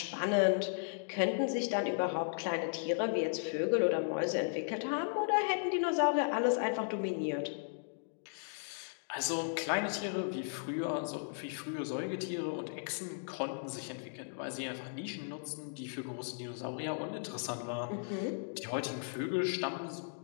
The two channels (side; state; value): right; silent; digital silence